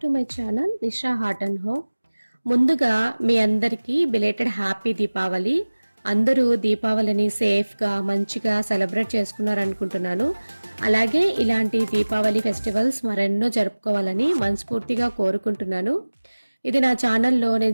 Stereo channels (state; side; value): inverted; both; correlation -1.00